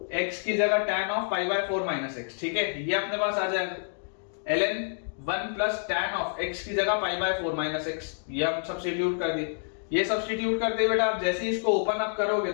x की जगह tan of pi by 4 minus x. ठीक है, ये अपने पास आ जाएगा ln 1 plus tan of x की जगह पाई बाय 4 माइनस एक्स। ये हम सब्स्टिट्यूट कर दिए। ये सब्स्टिट्यूट करते बेटा आप जैसे ही इसको ओपन अप करोगे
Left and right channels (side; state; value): right; silent; digital silence